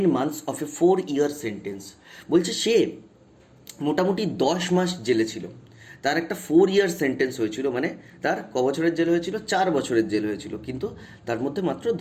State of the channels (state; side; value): identical; both; correlation 1.00